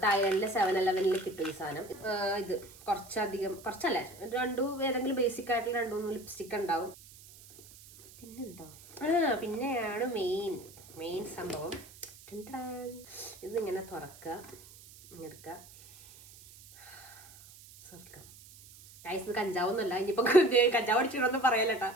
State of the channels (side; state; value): right; noise; hiss, 20 dB below the sound